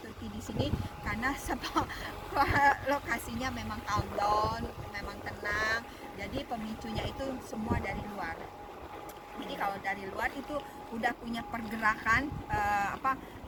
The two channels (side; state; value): both; identical; correlation 1.00